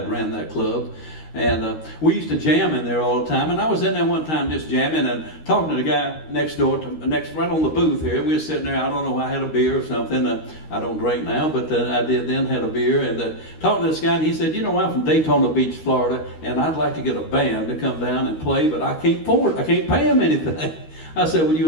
ran that club. And we used to jam in there all the time. And I was in there one time just jamming and talking to the guy next door, right on the booth here. We were sitting there, I don't know, I had a beer or something. I don't drink now, but I did then, had a beer. And talking to this guy, and he said, "You know, I'm from Daytona Beach, Florida, and I'd like to get a band to come down and play, but I can't afford it. I can't pay them anything." I said, "Well,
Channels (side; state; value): right; late; 13 ms